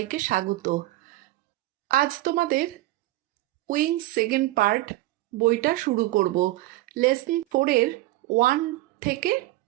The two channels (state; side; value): quieter; left; 17.6 dB